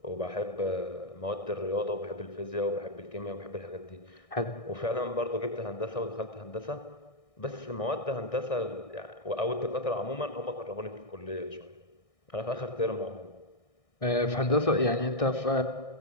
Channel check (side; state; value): right; late; 1.6 ms